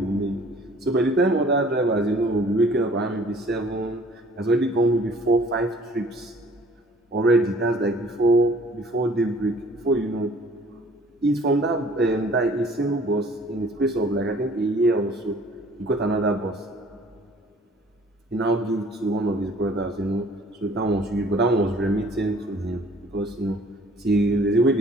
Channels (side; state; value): both; normal; correlation 0.54